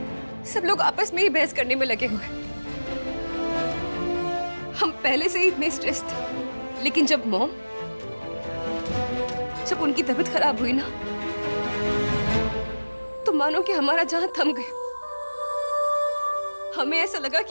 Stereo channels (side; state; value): both; inverted; correlation -1.00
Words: लोग आपस में ही बहस करने में लगे हुए। हम पहले से ही इतने स्ट्रेस थे, लेकिन जब उनकी तबीयत खराब हुई ना, तो मानो कि हमारा जहां थम गया। हमें ऐसा लगा